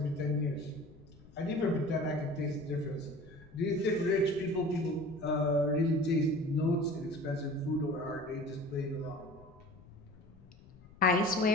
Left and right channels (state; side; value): noise; left; rumble, 23 dB below the sound